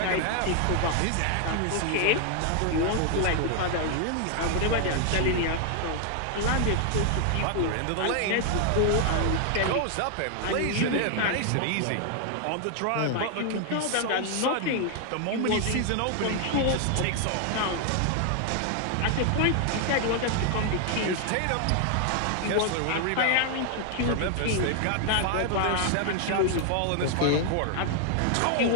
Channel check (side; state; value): both; different; correlation 0.00